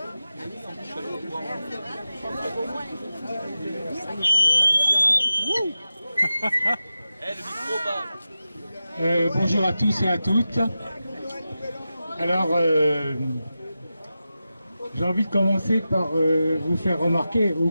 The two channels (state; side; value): inverted; both; correlation -0.93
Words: Bonjour à tous et à toutes. Alors, j'ai envie de commencer par vous faire remarquer, au